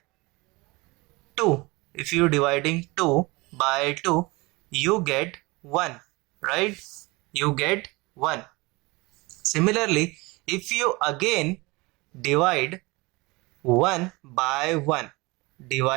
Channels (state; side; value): quieter; left; 24.2 dB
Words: 2, if you dividing 2 by 2, you get 1, right? You get 1. Similarly, if you again divide 1 by 1,